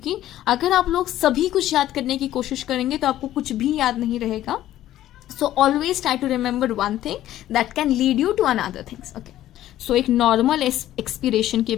अगर आप लोग सभी कुछ याद करने की कोशिश करेंगे तो आपको कुछ भी याद नहीं रहेगा. So always try to remember one thing that can lead you to another things, okay. So एक नॉर्मल एक्सपिरेशन के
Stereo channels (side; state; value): right; quieter; 13.3 dB